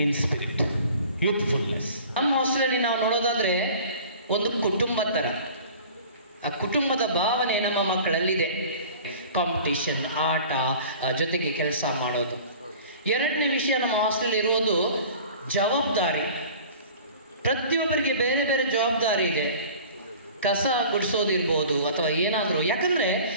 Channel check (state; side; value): inverted; both; correlation -0.44